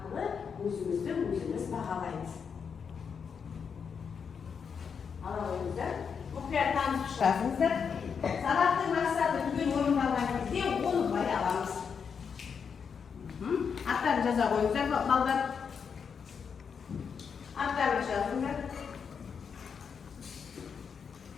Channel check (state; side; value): quieter; right; 6.5 dB